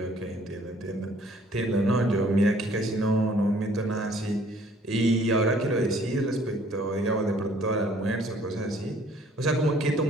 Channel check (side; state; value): both; normal; correlation 0.58